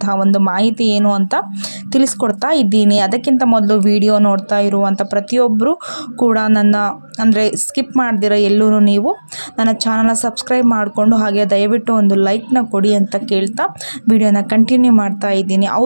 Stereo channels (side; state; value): both; inverted; correlation -1.00